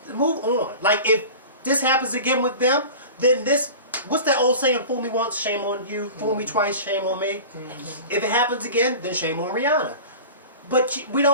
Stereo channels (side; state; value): both; inverted; correlation -0.35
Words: Move on. Like, if this happens again with them, then what's that old saying? Fool me once, shame on you. Fool me twice, shame on me. If it happens again, then shame on Rihanna. But